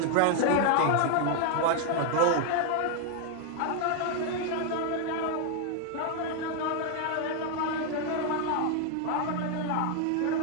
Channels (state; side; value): different; both; correlation 0.00